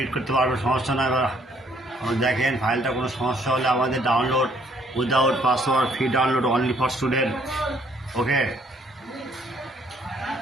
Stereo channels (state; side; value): normal; both; correlation 0.65